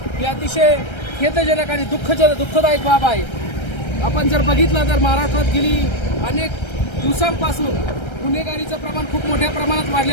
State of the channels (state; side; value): late; right; 1.3 ms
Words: ही अतिशय खेदजनक आणि दुःखदायक बाब आहे. आपण जर बघितलं तर महाराष्ट्रात गेली अनेक दिवसांपासून गुन्हेगारीचं प्रमाण खूप मोठ्या प्रमाणात